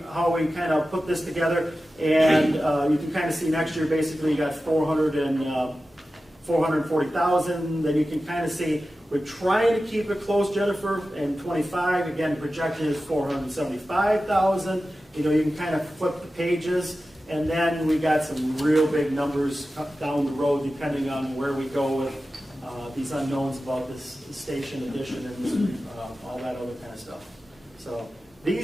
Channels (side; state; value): both; normal; correlation 0.94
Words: kind of put this together. And you can kind of see next year, basically, you got 440,000. Then you can kind of see we're trying to keep it close, Jennifer, and 25, again, projected is 475,000. You can kind of flip the pages, and then we got some real big numbers down the road, depending on where we go with these unknowns about this station addition and all that other kind of stuff. So